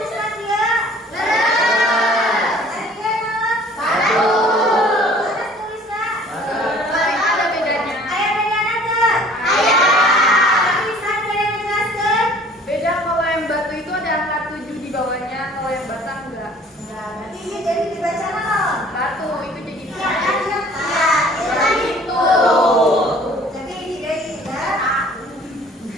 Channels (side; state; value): both; normal; correlation 0.52